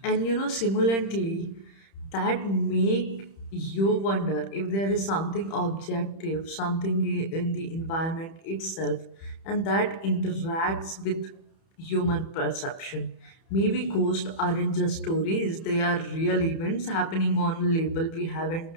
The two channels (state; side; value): late; right; 30 ms